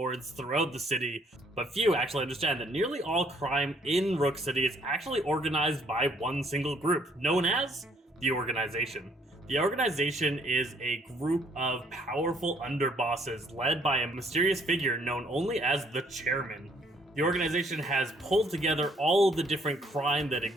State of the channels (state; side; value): normal; both; correlation 0.64